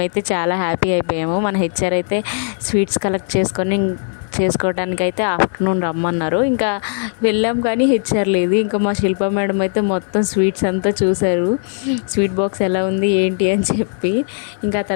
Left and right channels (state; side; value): silent; right; 62 dB below the other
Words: చాలా హ్యాపీ అయిపోయాము. మన హెచ్ఆర్ అయితే స్వీట్స్ కలెక్ట్ చేసుకోవడానికి అయితే ఆఫ్టర్నూన్ రమ్మన్నారు. ఇంకా వెళ్ళాం కానీ హెచ్ఆర్ లేదు. ఇంకా మా శిల్ప మేడం అయితే మొత్తం స్వీట్స్ అంతా చూశారు, స్వీట్ బాక్స్ ఎలా ఉంది ఏంటి అని చెప్పి. ఇంకా